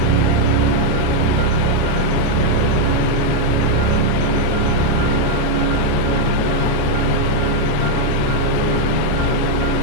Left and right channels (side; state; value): both; different; correlation 0.00